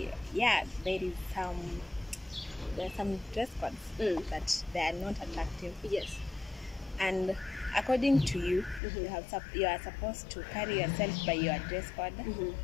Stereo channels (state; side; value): drops out; right; at 8.8 s